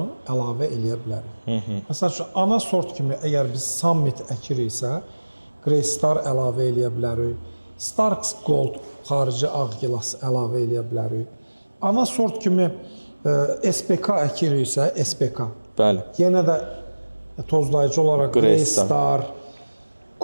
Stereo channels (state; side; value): inverted; both; correlation -1.00